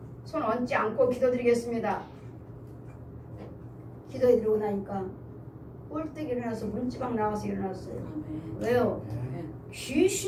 얹지 않고 기도드리겠습니다. 기도해드리고 나니까 꼴떡 일어나서 문지방 나와서 일어났어요. 왜요?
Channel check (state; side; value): identical; both; correlation 1.00